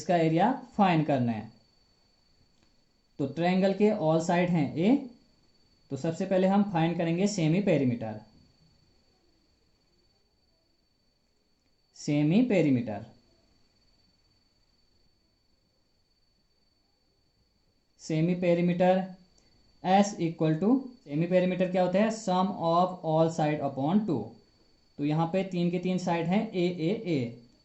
एरिया फाइंड करना है। तो ट्रायंगल के ऑल साइड हैं ए, तो सबसे पहले हम फाइंड करेंगे semi perimeter. Semi perimeter, semi perimeter S equal to, semi perimeter क्या होता है, sum of all side upon 2। तो यहाँ पे 3 के 3 साइड हैं ए ए ए।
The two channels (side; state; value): both; identical; correlation 1.00